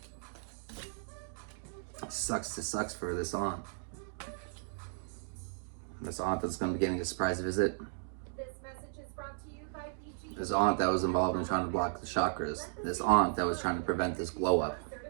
Sucks to sucks for this aunt. This aunt that's going to be getting a surprise visit. This aunt that was involved in trying to block the chakras. This aunt that was trying to prevent this glow up.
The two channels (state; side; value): silent; left; digital silence